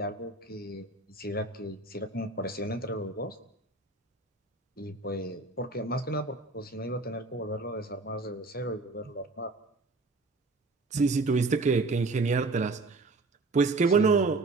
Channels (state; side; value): quieter; left; 3.4 dB